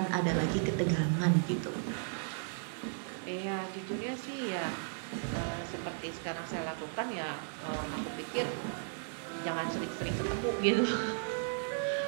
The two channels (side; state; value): left; silent; 54 dB below the other